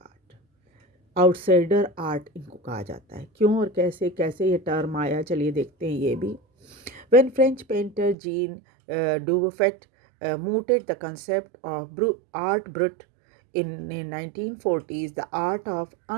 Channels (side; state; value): left; drops out; at 8.2 s